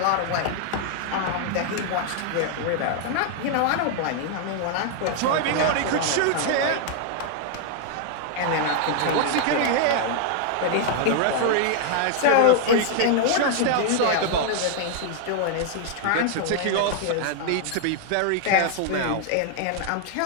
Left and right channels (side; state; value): both; different; correlation 0.00